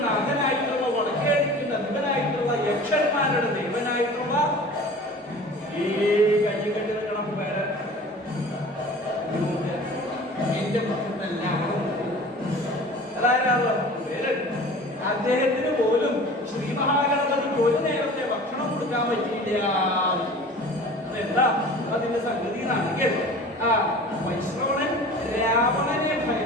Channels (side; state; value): both; normal; correlation 0.41